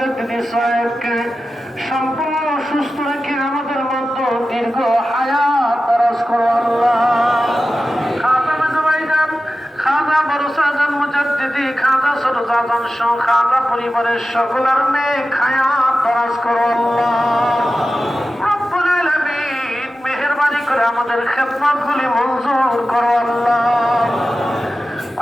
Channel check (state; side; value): normal; both; correlation 0.93